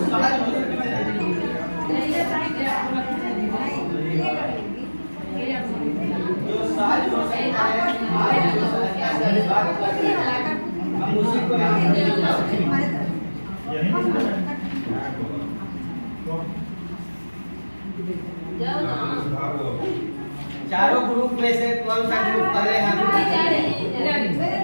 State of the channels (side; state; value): both; inverted; correlation -1.00